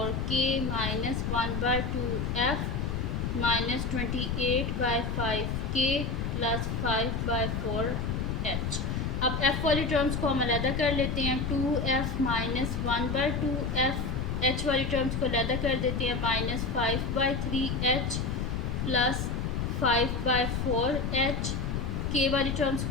minus 1/2f minus 28/5k plus 5/4h। अब f वाली टर्म्स को हम अलहदा कर लेते हैं। 2f माइनस 1/2f, h वाली टर्म्स को अलहदा कर देते हैं, minus 5/3h plus 5/4h। k वाली टर्म्स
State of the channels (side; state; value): left; noise; rumble, 1 dB below the sound